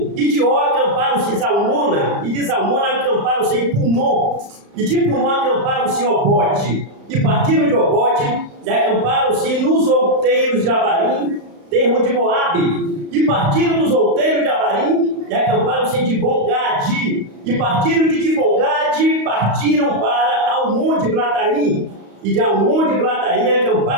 E de Ó acamparam-se em Zalmona. E de Zalmona acamparam-se em Punon. E de Punon acamparam-se em Obote. E partiram de Obote e acamparam-se nos outeiros de Abarim, termo de Moabe. E partiram dos outeiros de Abarim e acamparam-se em Dibon-Gade. E partiram de Dibon-Gade, partiram para Almon de Blataim. E de Almon de Glataim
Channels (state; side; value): late; left; 35 ms